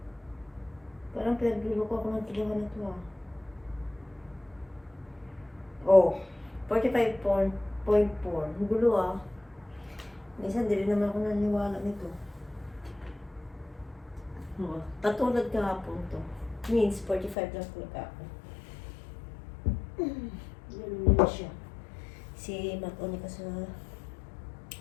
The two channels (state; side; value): drops out; right; at 17.4 s